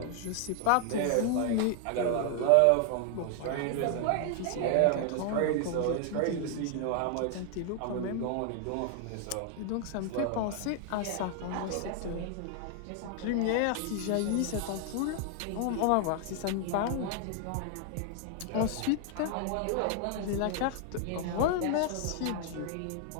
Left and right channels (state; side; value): different; both; correlation 0.00